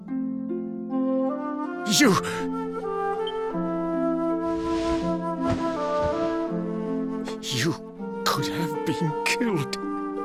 You could have been killed.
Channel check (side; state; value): both; identical; correlation 1.00